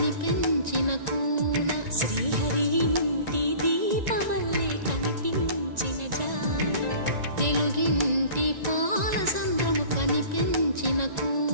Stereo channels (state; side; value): late; left; 1.9 ms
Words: కూన శ్రీహరి ఇంటి దీపమల్లే కనిపించిన జాన తెలుగింటి పాల సంద్రము కనిపించిన